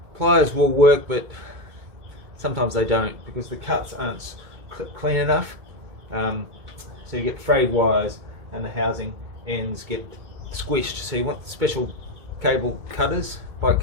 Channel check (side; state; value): left; late; 2.2 ms